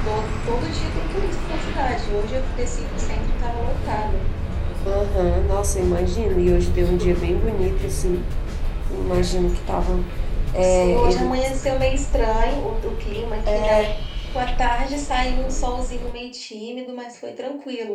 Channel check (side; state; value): both; identical; correlation 1.00